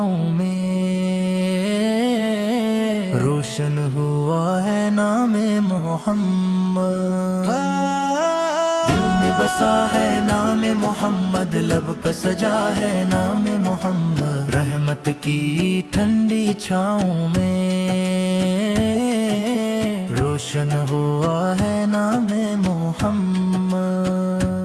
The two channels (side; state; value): both; identical; correlation 1.00